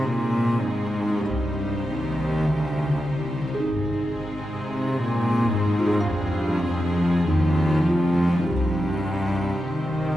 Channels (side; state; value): both; normal; correlation 0.89